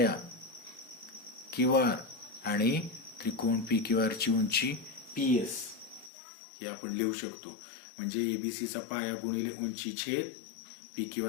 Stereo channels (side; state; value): right; drops out; at 6.1 s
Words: क्यू आर आणि त्रिकोण पी क्यू आर ची उंची पी एस हे आपण लिहू शकतो. म्हणजे एबीसी चा पाया गुणिले उंची छेद पी क्यू